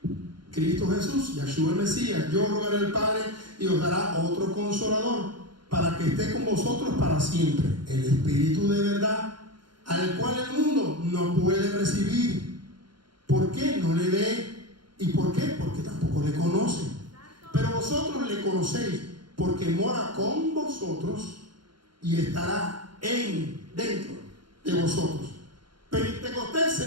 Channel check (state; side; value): late; left; 0.72 ms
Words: Cristo Jesús, Yahshua el Mesías. Yo rogaré al Padre y os dará otro consolador para que esté con vosotros para siempre, el Espíritu de verdad, al cual el mundo no puede recibir. ¿Por qué? No le ve. ¿Y por qué? Porque tampoco le conoce. Pero vosotros le conocéis, porque mora con vosotros y estará dentro de vosotros. Pentecostés